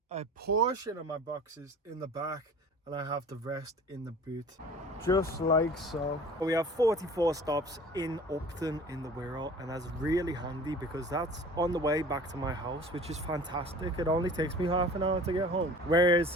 a portion of my boxes in the back and I have the rest in the boot. Just like so. We have 44 stops in Upton in the Wirral, and that's really handy because that's on the way back to my house, which is fantastic. It only takes me half an hour to get home. Whereas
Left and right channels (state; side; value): normal; both; correlation 0.44